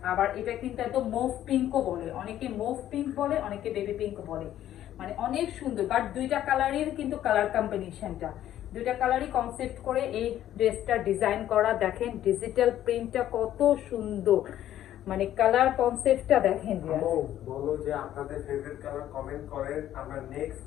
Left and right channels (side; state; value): right; quieter; 12.1 dB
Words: আবার এটা কিন্তু একদম মুভ পিঙ্কও বলে, অনেকে মুভ পিঙ্ক বলে, অনেকে বেবি পিঙ্ক বলে, মানে অনেক সুন্দর। বাট দুইটা কালারের কিন্তু কালার কম্বিনেশনটা, দুইটা কালারই কনসেপ্ট করে এই ড্রেসটা ডিজাইন করা, দেখেন ডিজিটাল প্রিন্টটা কত সুন্দর, মানে কালার কনসেপ্টটা দেখেন। বলো যে আপনাদের ফেভারিট কালার কমেন্ট করেন, আমরা